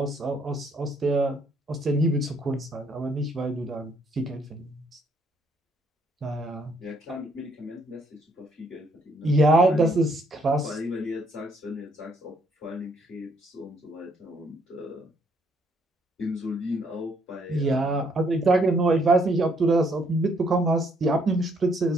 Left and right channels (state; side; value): normal; both; correlation 0.69